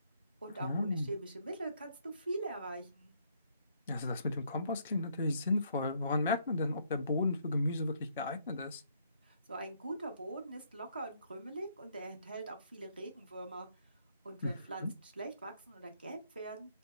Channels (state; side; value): inverted; both; correlation -0.69